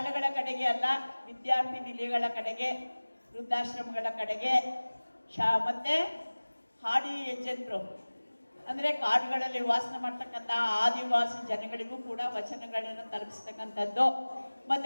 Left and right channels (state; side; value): inverted; both; correlation -1.00